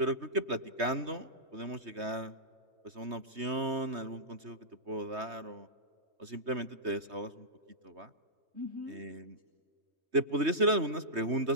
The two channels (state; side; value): late; left; 3.2 ms